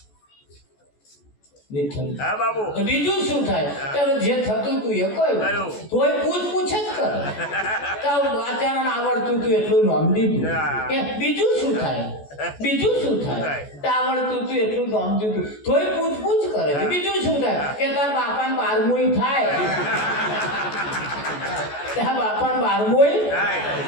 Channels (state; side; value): late; right; 14 ms